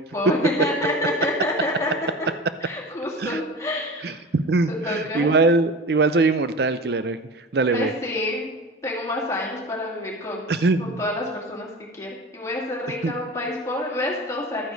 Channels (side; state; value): both; normal; correlation 0.33